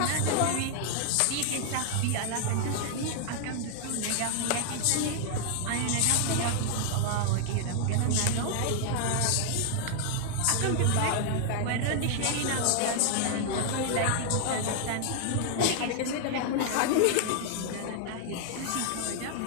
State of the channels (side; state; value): both; different; correlation 0.00